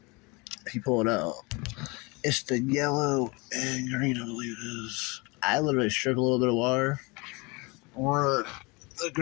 If you pull it out, it's the yellow and green, I believe it is. I literally strip a little bit of wire, or the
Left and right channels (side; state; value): right; quieter; 26.9 dB